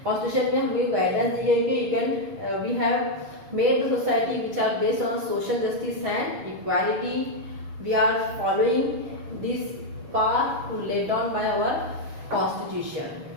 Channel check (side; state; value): left; late; 6.3 ms